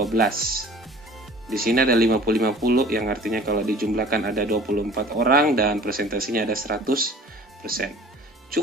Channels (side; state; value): both; normal; correlation 0.46